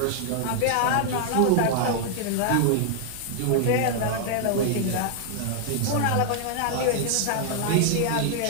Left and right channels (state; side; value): different; both; correlation 0.00